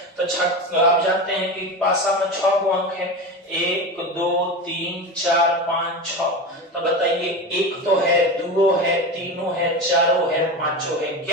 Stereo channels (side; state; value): both; normal; correlation 0.24